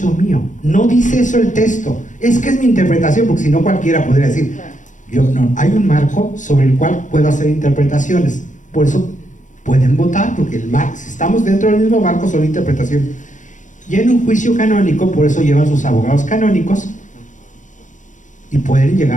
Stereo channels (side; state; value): right; late; 0.36 ms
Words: mío. No dice eso el texto. Es que es mi interpretación, porque si no cualquiera podría decir, yo no, hay un marco sobre el cual puedo hacer interpretaciones. Por eso pueden votar, porque el marco, si estamos dentro del mismo marco, son interpretaciones. Y en un juicio canónico, por eso llevan sus abogados canónicos y pueden